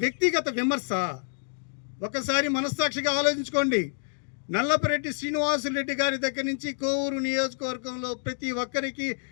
వ్యక్తిగత విమర్శ? ఒకసారి మనస్సాక్షిగా ఆలోచించుకోండి. నల్లపురెడ్డి శ్రీనివాసులరెడ్డి గారి దగ్గర నుంచి కోవూరు నియోజకవర్గంలో ప్రతి ఒక్కరికి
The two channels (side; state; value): right; silent; digital silence